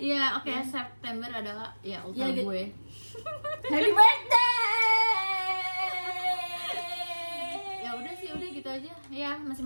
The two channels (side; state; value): both; inverted; correlation -1.00